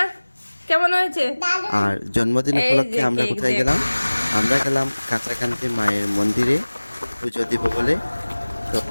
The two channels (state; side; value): inverted; both; correlation -1.00